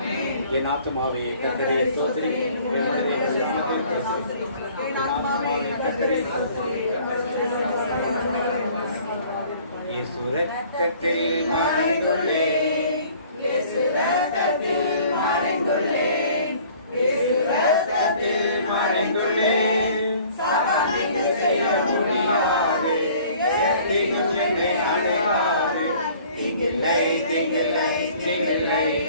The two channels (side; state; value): both; inverted; correlation -0.53